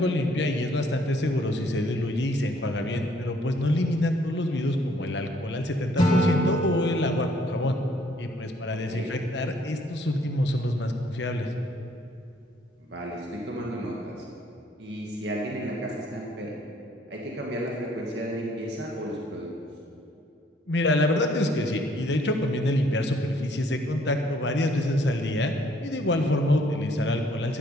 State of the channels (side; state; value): both; normal; correlation 0.64